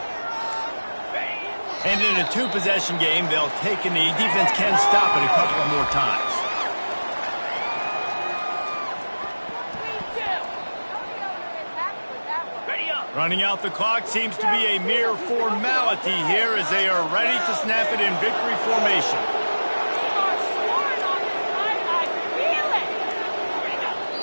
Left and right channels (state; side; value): inverted; both; correlation -1.00